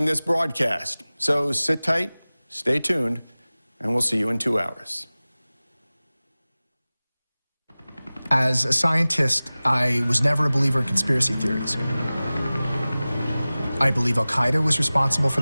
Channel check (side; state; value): both; inverted; correlation -0.98